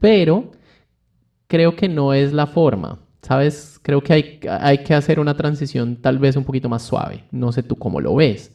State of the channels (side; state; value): both; identical; correlation 1.00